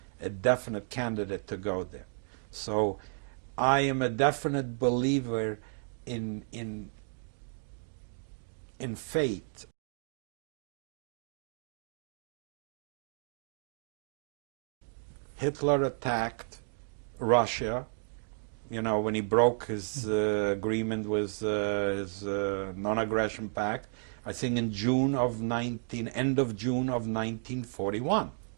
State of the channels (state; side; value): silent; left; digital silence